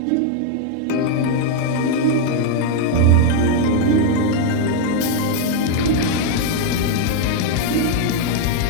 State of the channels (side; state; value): both; different; correlation 0.00